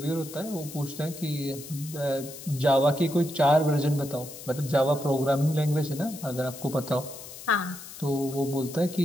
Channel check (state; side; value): noise; left; hiss, 14 dB below the sound